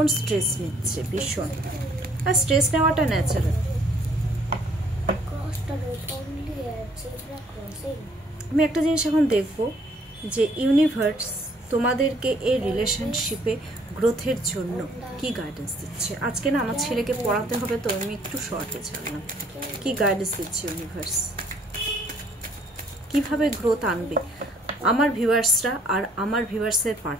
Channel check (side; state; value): both; normal; correlation 0.62